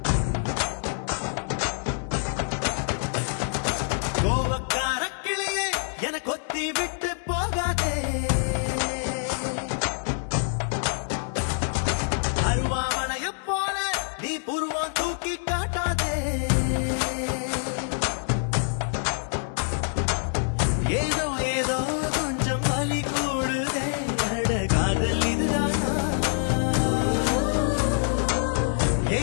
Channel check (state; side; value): silent; right; 61 dB below the other